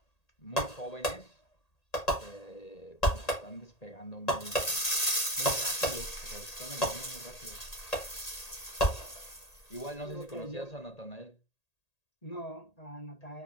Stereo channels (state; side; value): late; right; 1.8 ms